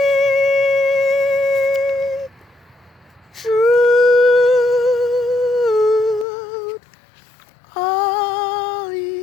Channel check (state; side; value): drops out; right; at 6.2 s